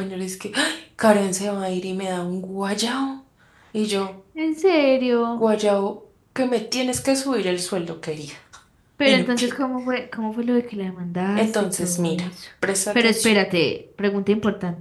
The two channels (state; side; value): identical; both; correlation 1.00